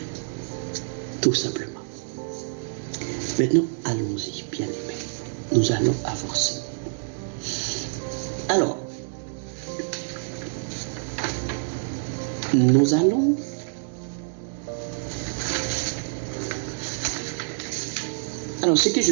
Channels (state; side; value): silent; left; digital silence